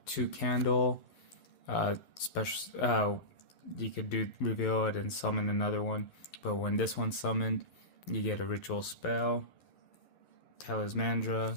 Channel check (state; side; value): late; right; 11 ms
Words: 2 Candle, special. You could do reveal it and summon another one, but when this one's summoned, you get a ritual spell.